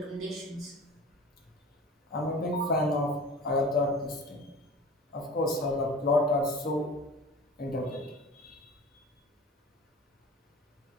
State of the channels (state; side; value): normal; both; correlation 0.39